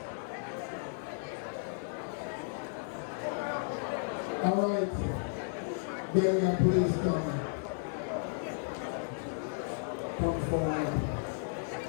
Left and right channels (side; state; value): right; silent; digital silence